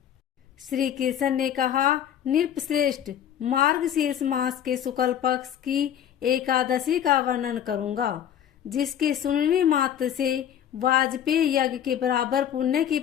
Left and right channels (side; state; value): right; quieter; 9.8 dB